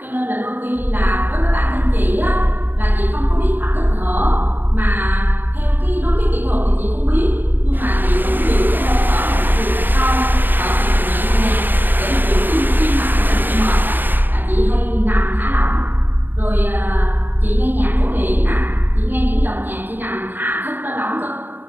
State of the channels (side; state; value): left; late; 0.091 ms